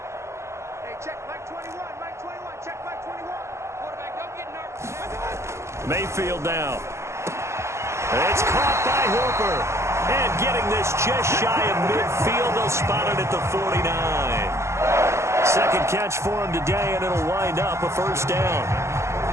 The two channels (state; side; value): late; left; 0.13 ms